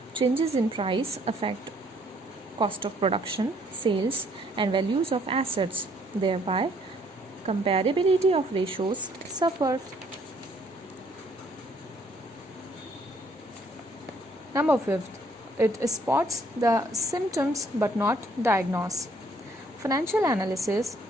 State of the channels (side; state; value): both; normal; correlation 0.64